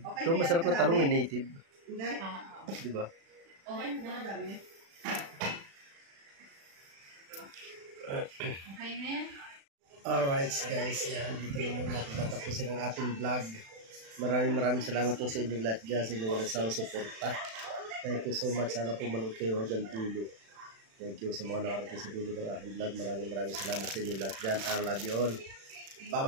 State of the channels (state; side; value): late; left; 36 ms